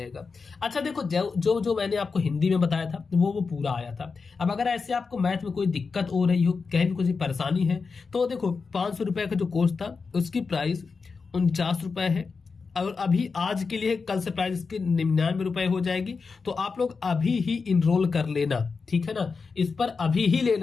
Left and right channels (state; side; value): quieter; right; 4.8 dB